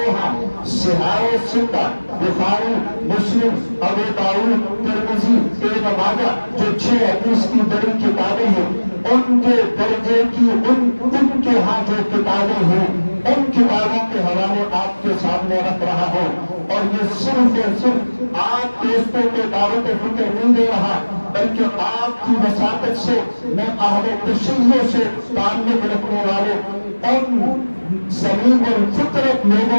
ہاں صحاح ستہ، بخاری، مسلم، ابو داؤد، ترمذی، ابن ماجہ جو 6 حدیث کی بڑی کتابیں ہیں، ان کے درجے کی ان کے ہاں جو کتابیں ہیں، ان کتابوں کے حوالے آپ کے سامنے رکھ رہا ہوں۔ اور یہ صرف اور صرف آپ دوستوں کو دعوت فکر نہیں دے رہا، بلکہ آپ کی وساطت سے میں اہل تشیع سے تعلق رکھنے والے ان زمین الفطرت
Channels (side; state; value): both; inverted; correlation -1.00